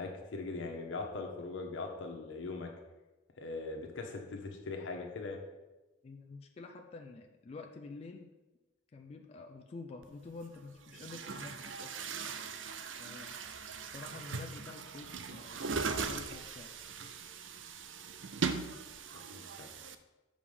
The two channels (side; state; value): both; normal; correlation 0.20